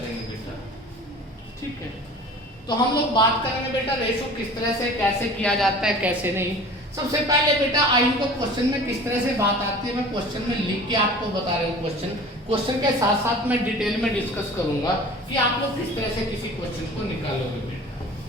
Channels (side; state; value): both; normal; correlation 0.42